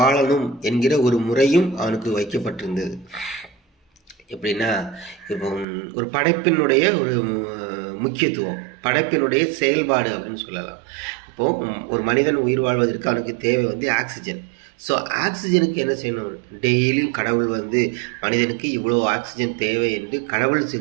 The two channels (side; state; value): left; drops out; at 5.7 s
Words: என்கிற ஒரு முறையும் அவனுக்கு வைக்கப்பட்டிருந்தது. எப்படின்னா, இப்போ ஒரு படைப்பினுடைய ஒரு முக்கியத்துவம், படைப்பினுடைய செயல்பாடு அப்படின்னு சொல்லலாம். இப்போது ஒரு மனிதன் உயிர் வாழ்வதற்கு அவனுக்கு தேவை ஆக்சிஜன். ஸோ ஆக்சிஜனுக்கு என்ன செய்யணும்? டெய்லியும் கடவுள் மனிதனுக்கு இவ்வளோ ஆக்சிஜன் தேவை என்று கடவுள்